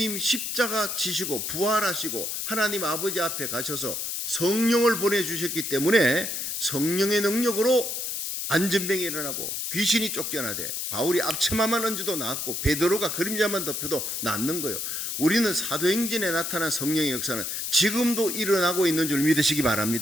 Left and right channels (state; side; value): noise; left; hiss, 3 dB below the sound